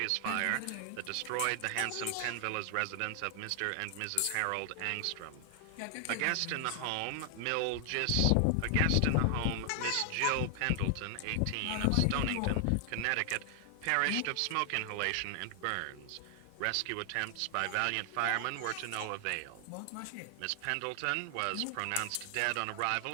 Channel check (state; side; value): different; both; correlation 0.00